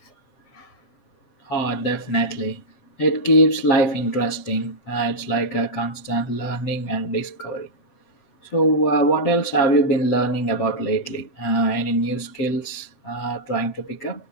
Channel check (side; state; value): right; late; 8.0 ms